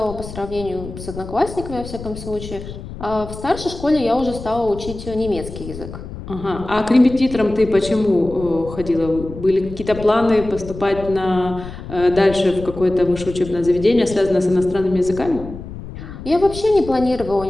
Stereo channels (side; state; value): left; noise; rumble, 12 dB below the sound